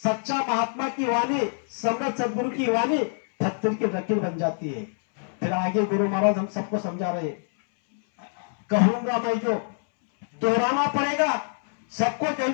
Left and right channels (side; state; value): right; silent; 61 dB below the other